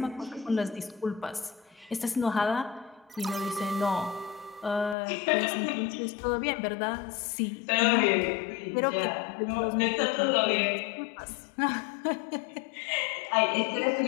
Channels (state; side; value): drops out; right; at 5.0 s